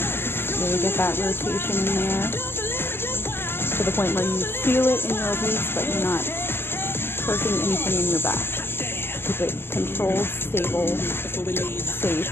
Really get that rotation in there to the point where you feel it in your obliques, but you're not hurting anything in your back. Keep it controlled, stable, safe,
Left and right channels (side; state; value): right; late; 0.11 ms